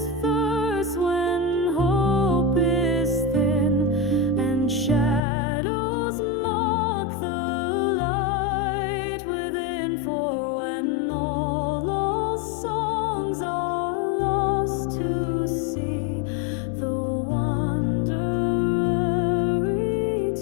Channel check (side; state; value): right; drops out; at 5.2 s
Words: verse when hope is thin and shadows mock the light within. For when all songs are lost to sea, the wanderer